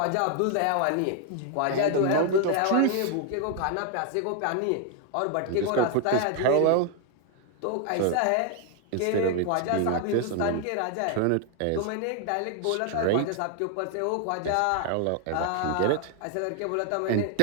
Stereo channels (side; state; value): both; different; correlation 0.00